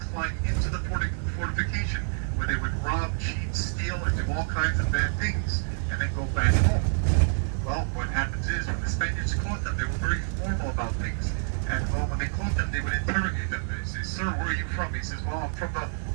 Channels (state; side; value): silent; left; 58 dB below the other